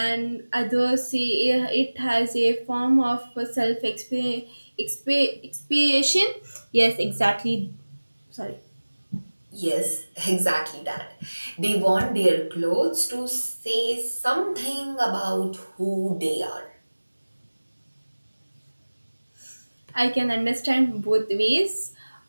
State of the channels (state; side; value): inverted; both; correlation -1.00